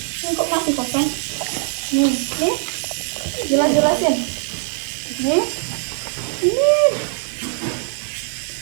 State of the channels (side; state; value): left; silent; digital silence